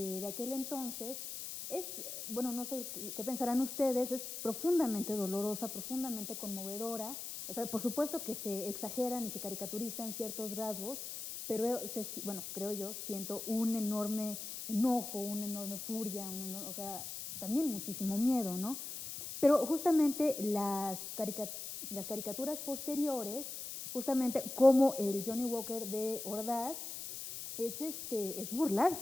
aquel entonces, es, bueno, no sé qué pensarán ustedes, es profundamente dolorosa, profundamente conmovedora. O sea, por supuesto que se exageran y se caricaturizan ciertos rasgos, pero bueno, creo yo, siento un enorme enojo, una enorme furia, o sea, también muchísimo miedo, ¿no? Pero justamente las caricaturas posteriores, justamente como el Johnny Walker de Ordaz, es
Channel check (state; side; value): noise; left; hiss, 7 dB below the sound